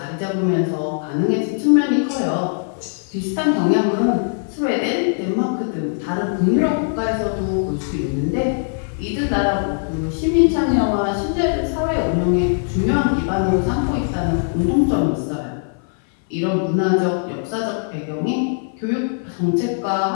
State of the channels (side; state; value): right; silent; 59 dB below the other